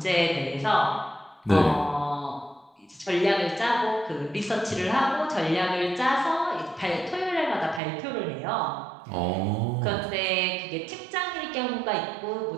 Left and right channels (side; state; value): left; drops out; at 7.8 s